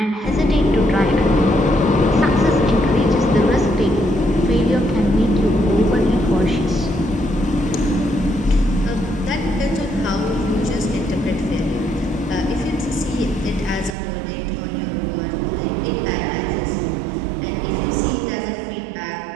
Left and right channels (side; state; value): left; drops out; at 14.0 s